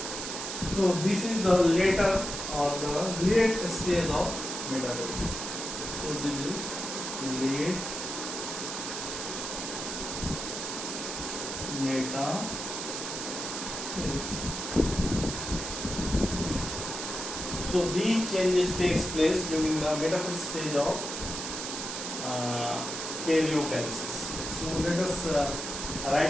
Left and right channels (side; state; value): right; noise; hiss, 5 dB below the sound